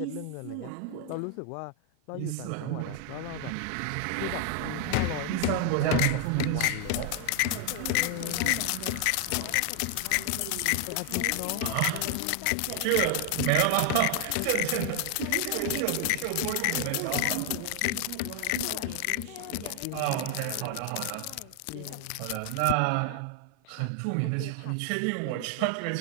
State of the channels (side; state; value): both; different; correlation 0.00